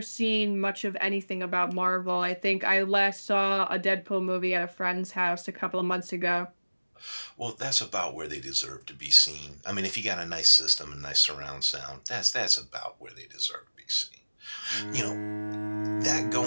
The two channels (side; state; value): both; inverted; correlation -1.00